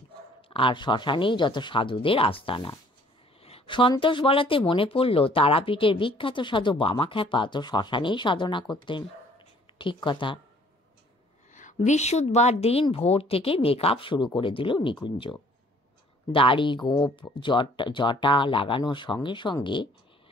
আর শ্মশানেই যত সাধুদের আস্তানা। সন্তোষ বলাতে মনে পড়ল তারাপীঠের বিখ্যাত সাধু বামাখ্যাপা তো শ্মশানেই সাধনা করতেন। ঠিক কথা। বৃহস্পতিবার দিন ভোর থেকে মেকআপ শুরু করে দিল নিকুঞ্জ। দাড়ি, গোঁফ, জটা লাগানোর সঙ্গে সঙ্গে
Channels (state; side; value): normal; both; correlation 0.58